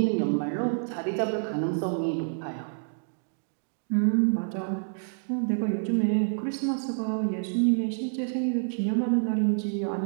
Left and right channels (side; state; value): left; silent; digital silence